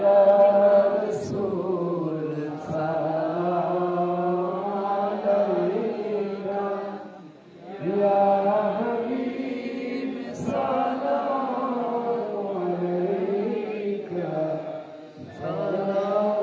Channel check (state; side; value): identical; both; correlation 1.00